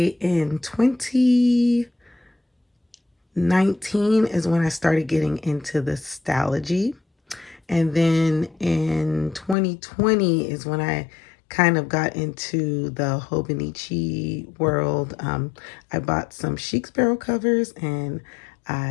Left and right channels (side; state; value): right; drops out; at 9.6 s